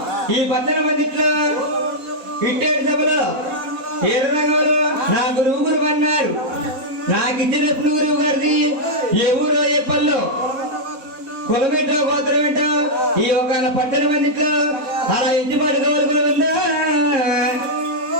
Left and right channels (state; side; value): late; left; 4.1 ms